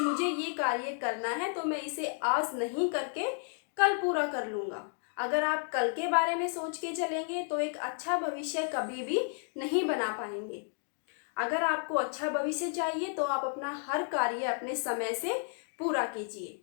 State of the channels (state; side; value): silent; right; 56 dB below the other